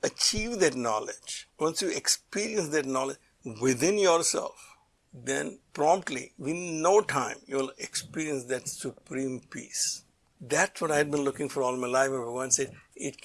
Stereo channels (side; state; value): both; identical; correlation 1.00